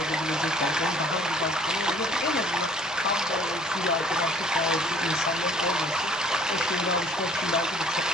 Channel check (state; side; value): normal; both; correlation 0.55